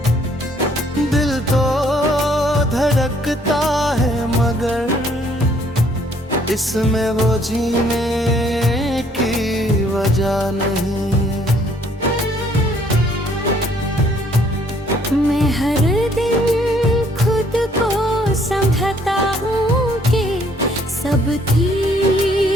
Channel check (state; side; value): normal; both; correlation 0.64